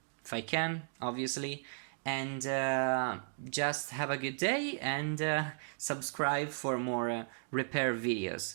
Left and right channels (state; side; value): silent; left; digital silence